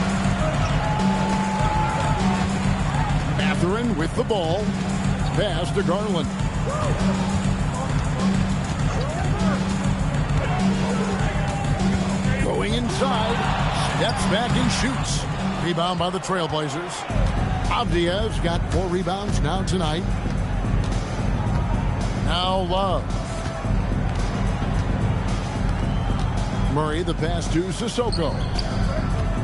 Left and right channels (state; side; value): identical; both; correlation 1.00